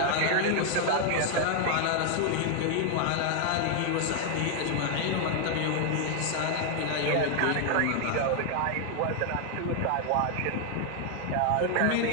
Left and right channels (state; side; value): different; both; correlation 0.00